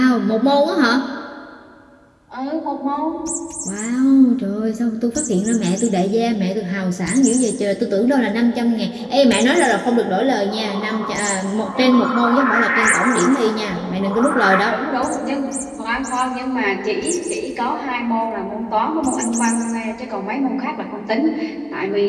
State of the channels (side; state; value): both; identical; correlation 1.00